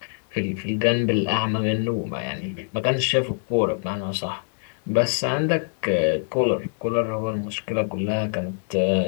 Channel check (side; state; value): right; silent; digital silence